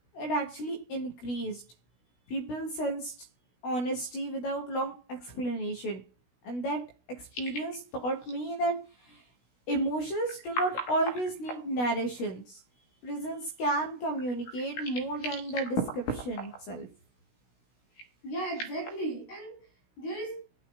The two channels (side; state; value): right; late; 16 ms